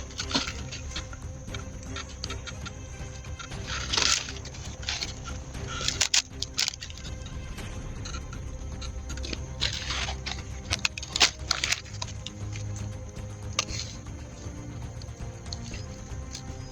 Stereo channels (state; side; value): identical; both; correlation 1.00